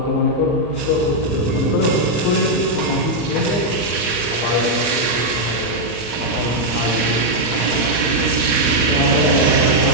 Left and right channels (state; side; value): late; right; 34 ms